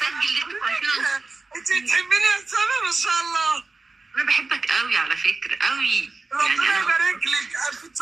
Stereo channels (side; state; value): left; quieter; 3.8 dB